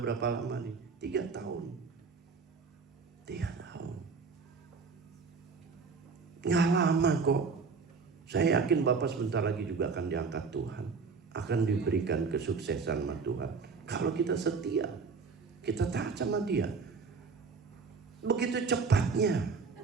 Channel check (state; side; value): quieter; left; 5.0 dB